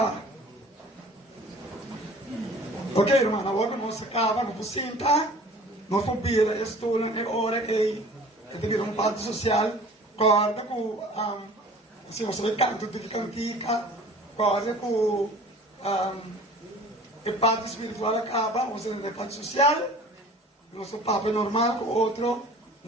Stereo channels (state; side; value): normal; both; correlation 0.46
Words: Ok, irmão, agora nós acabamos com possível. Nós vamos pedir a estudo e hora que tem um parte social, corda com se você vai canto de cantica, corda com a parte espiritual acaba, você tem a parte social, nosso papo é normal, com outro,